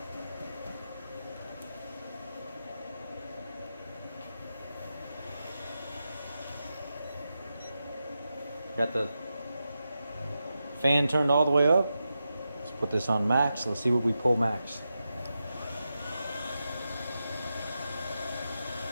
Got the fan turned all the way up. Let's put this on max. Let's see what we pull max.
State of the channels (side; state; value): both; inverted; correlation -0.90